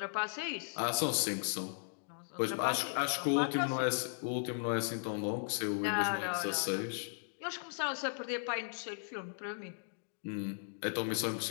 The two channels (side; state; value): right; silent; digital silence